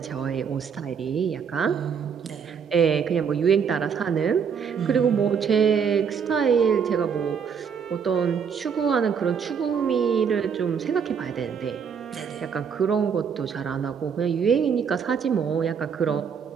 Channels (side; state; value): left; quieter; 6.8 dB